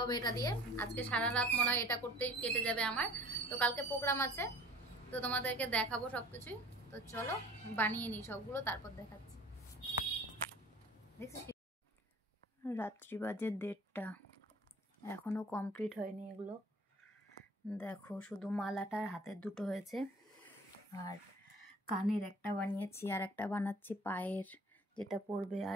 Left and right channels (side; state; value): both; normal; correlation 0.47